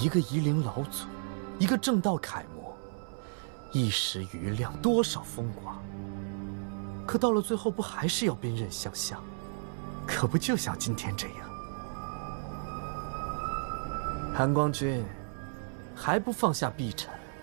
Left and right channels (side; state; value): left; silent; 56 dB below the other